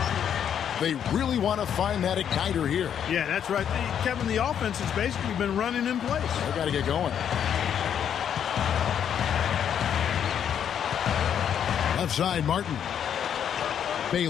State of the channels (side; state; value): right; quieter; 8.8 dB